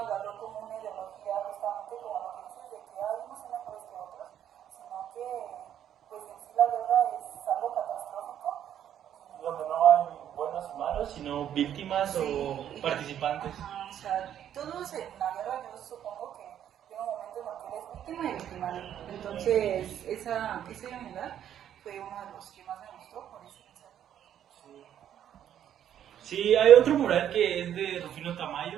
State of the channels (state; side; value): quieter; left; 10.2 dB